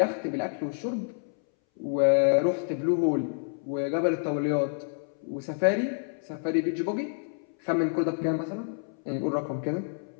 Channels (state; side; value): silent; right; 59 dB below the other